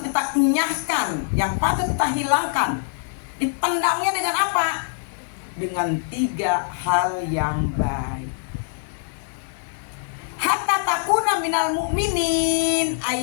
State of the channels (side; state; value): right; silent; 56 dB below the other